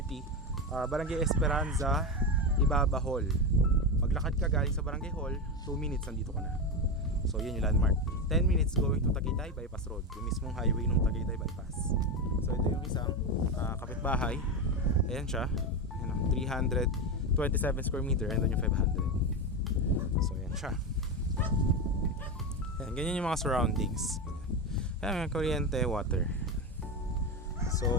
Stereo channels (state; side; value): normal; both; correlation 0.15